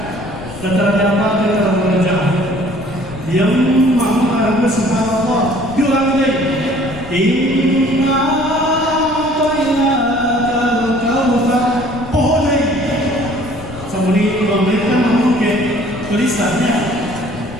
dan terdapat di dalam wajah yang maha subhanallah bilang deh inna a'tainakal kautsar pohon ini seperti memberikan mungkin tulisannya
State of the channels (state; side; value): noise; left; rumble, 15 dB below the sound